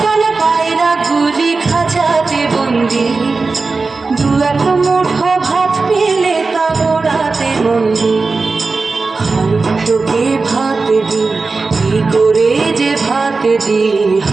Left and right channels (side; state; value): left; quieter; 4.0 dB